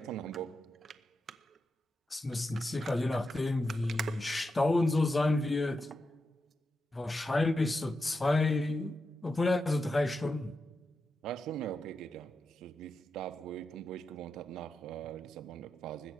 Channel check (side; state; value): both; normal; correlation 0.88